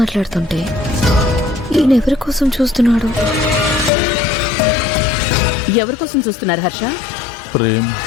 ఈయన ఎవరి కోసం చూస్తున్నాడు? ఎవరి కోసం చూస్తున్నారు హర్ష? ప్రేమ్,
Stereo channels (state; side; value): drops out; right; at 3.9 s